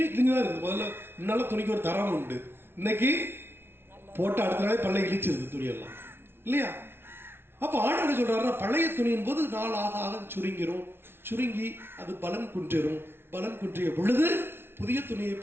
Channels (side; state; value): left; late; 0.11 ms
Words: கிழிஞ்சுதான் இருக்குது. முதல்ல முன்னால துணிக்கு ஒரு தரம் உண்டு, இன்னைக்கு போட்டு அடுத்த நாளே பல்லை இழிச்சிருக்கு துணியெல்லாம் இல்லையா? அப்போ ஆண்டவர் சொல்றாருன்னா, பழைய துணியின் போது நாள் ஆக ஆக சுருங்கி அது பலன் குன்றிடும். பலன் குன்றிய பொழுது புதிய துணியை